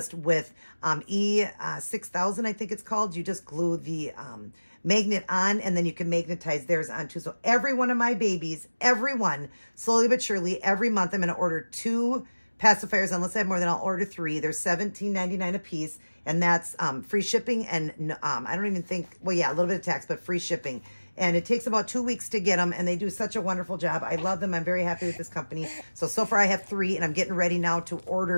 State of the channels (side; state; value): both; inverted; correlation -1.00